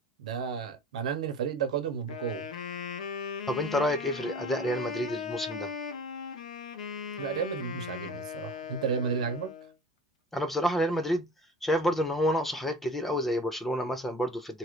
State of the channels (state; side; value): normal; both; correlation 0.39